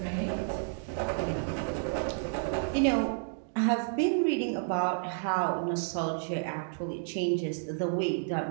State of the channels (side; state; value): left; silent; digital silence